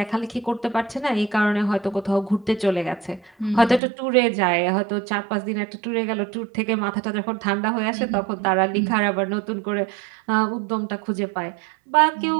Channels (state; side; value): drops out; left; at 3.8 s